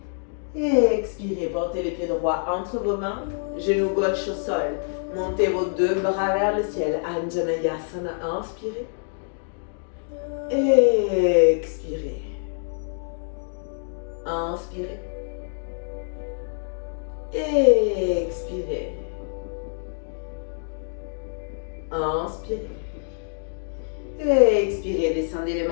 Et expirez, portez les pieds droits entre vos mains, genoux gauche au sol. Montez vos deux bras vers le ciel. Anjaneyasana, inspirez. Et expirez. Inspirez. Et expirez. Inspirez. Et expirez, descendez les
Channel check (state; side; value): silent; right; digital silence